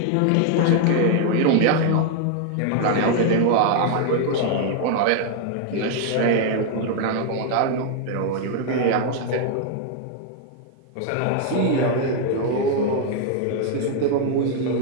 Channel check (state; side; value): different; both; correlation 0.00